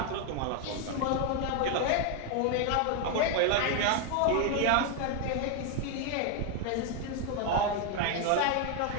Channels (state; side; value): different; both; correlation 0.01